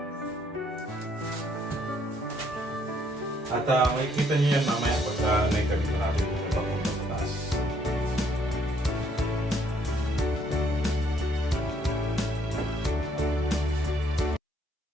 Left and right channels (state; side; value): normal; both; correlation 0.67